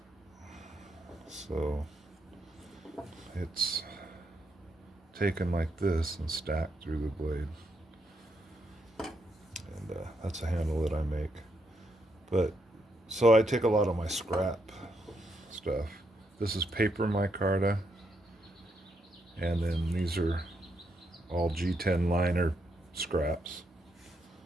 so it's taken like this and stacked through the blade. And that's a handle that I make. But so I take a lot of my scrap stuff. This is paper micarta, and then these are all G10 liner scraps.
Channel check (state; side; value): normal; both; correlation 0.78